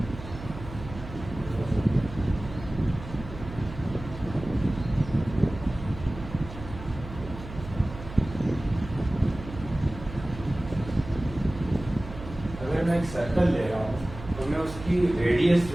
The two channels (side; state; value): right; noise; hum, 12 dB below the sound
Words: अगर मैं एक सर्कल ले रहा हूँ तो मैं उसकी रेडियस